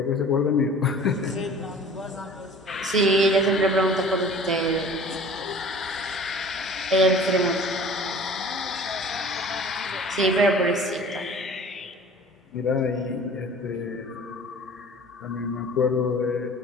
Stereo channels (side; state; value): both; normal; correlation 0.45